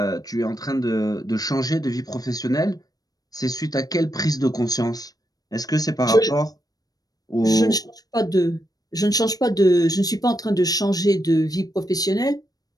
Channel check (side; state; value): right; late; 0.18 ms